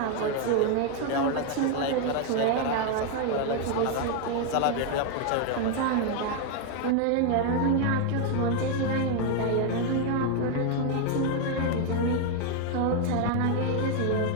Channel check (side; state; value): both; different; correlation 0.01